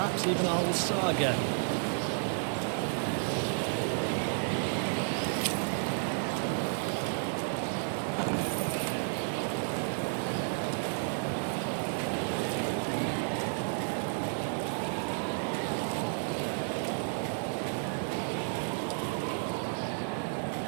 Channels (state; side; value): silent; left; digital silence